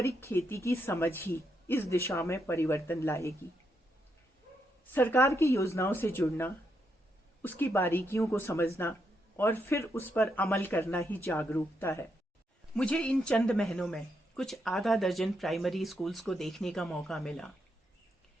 खेती की समझ ही इस दिशा में परिवर्तन लाएगी। सरकार की योजनाओं से जुड़ना, उसकी बारीकियों को समझना और फिर उस पर अमल करना ही जागरूकता है। मुझे इन चंद महीनों में कुछ आधा दर्जन प्राइमरी स्कूल्स को देखने का मौका मिला।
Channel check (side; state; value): both; normal; correlation 0.80